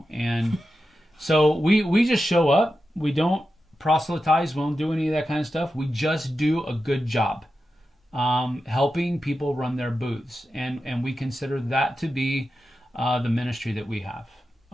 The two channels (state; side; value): normal; both; correlation 0.91